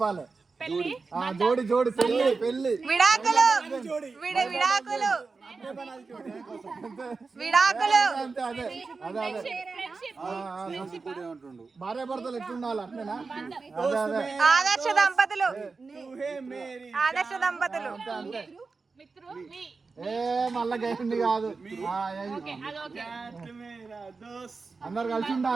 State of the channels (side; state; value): left; quieter; 4.3 dB